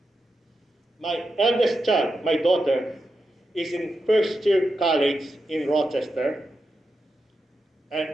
my eldest child, my daughter, is in first year college in Rochester. And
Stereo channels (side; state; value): both; normal; correlation 0.88